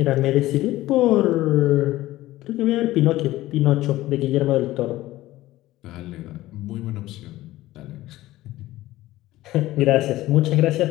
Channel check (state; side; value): quieter; right; 16.4 dB